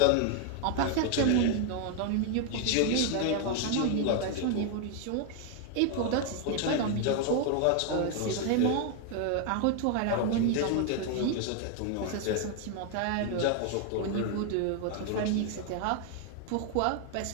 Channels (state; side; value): different; both; correlation 0.00